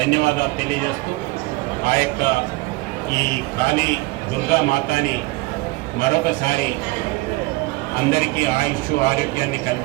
తెలియజేస్తూ ఆ యొక్క ఈ కాళీ దుర్గా మాతాని మరొకసారి అందరికీ ఆయుష్ ఆరోగ్యాన్ని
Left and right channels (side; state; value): left; quieter; 22.7 dB